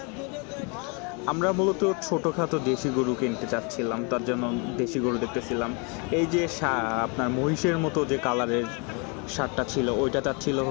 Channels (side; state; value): right; quieter; 33.6 dB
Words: আমরা মূলত ছোটোখাটো দেশি গরু কিনতে চাচ্ছিলাম, তার জন্য দেশি গরু দেখতেছিলাম। এই যে আপনার মহিষের মতো যে কালারের ষাঁড়টা ছিল, ওইটা চাচ্ছিল